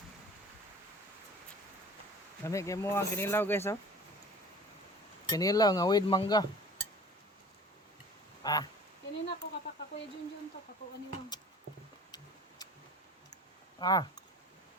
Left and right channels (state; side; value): normal; both; correlation 0.44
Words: Kami kay mo ang kinilaw guys oh. Kinilaw nga with mangga. Kanina ko kapaka Kuya Junjun to kako aniwang. Kanton.